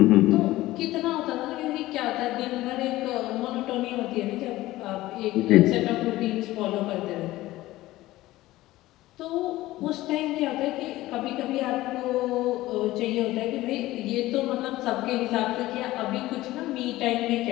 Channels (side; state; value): right; quieter; 17.0 dB